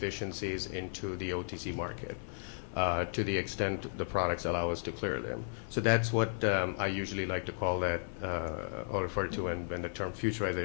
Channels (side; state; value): right; silent; 55 dB below the other